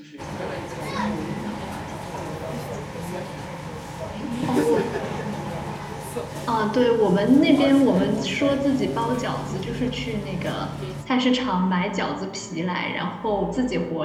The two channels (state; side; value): identical; both; correlation 1.00